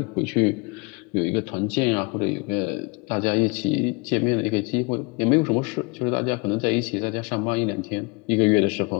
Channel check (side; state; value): right; quieter; 28.9 dB